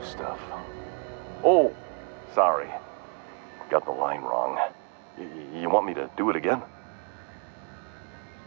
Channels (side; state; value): left; quieter; 39.1 dB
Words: stuff. Oh, sorry. Got the line wrong. You want me to do it again?